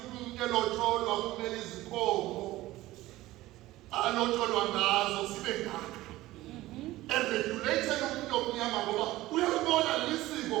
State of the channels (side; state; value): left; quieter; 17.1 dB